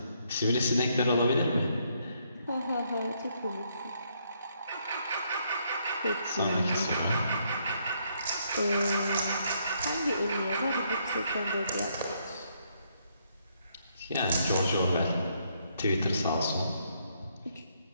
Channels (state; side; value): inverted; both; correlation -0.73